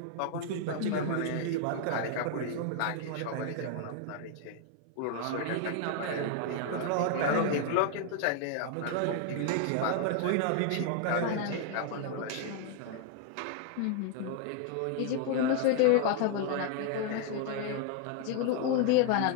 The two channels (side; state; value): both; different; correlation 0.00